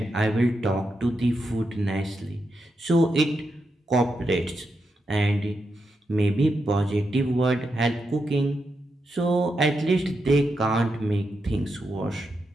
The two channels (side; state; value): both; normal; correlation 0.85